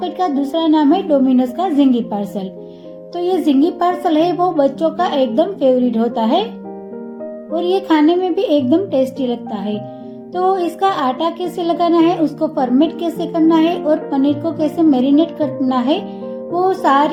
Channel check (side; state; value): both; identical; correlation 1.00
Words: का दूसरा नाम है डोमिनोज का जिंगी पार्सल। तो ये जिंगी पार्सल है वो बच्चों का एकदम फेवरेट होता है और ये खाने में भी एकदम टेस्टी लगता है। तो इसका आटा कैसे लगाना है, उसको फर्मेंट कैसे करना है और पनीर को कैसे मैरिनेट करना है, वो